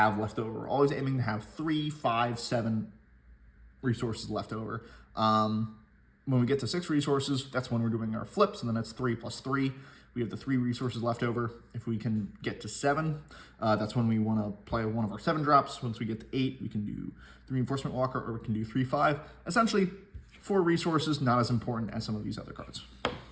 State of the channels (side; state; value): both; identical; correlation 1.00